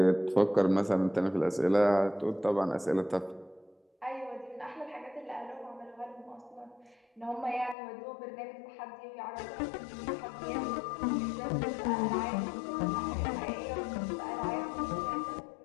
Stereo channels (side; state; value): right; drops out; at 7.8 s